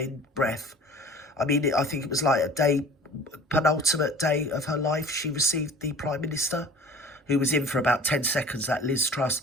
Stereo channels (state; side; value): normal; both; correlation 0.45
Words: breath. I mean, I think it was like penultimate day of her life, she received the Prime Minister, who was in for about 10 seconds, that Liz Truss,